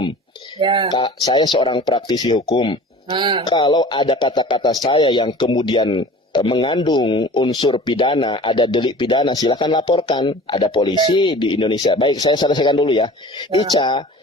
Ya. Saya seorang praktisi hukum. Kalau ada kata-kata saya yang kemudian mengandung unsur pidana, ada delik pidana, silakan laporkan. Ada polisi di Indonesia. Baik, saya selesaikan dulu ya. Ica,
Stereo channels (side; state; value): both; normal; correlation 0.42